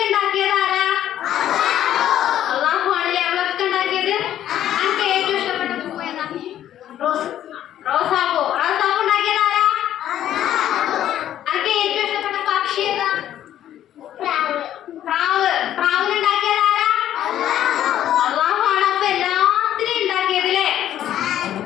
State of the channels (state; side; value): quieter; right; 11.6 dB